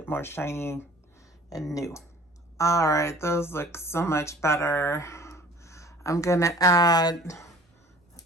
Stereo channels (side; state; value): both; normal; correlation 0.49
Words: more shiny and new. All right, those look so much better. I'm gonna add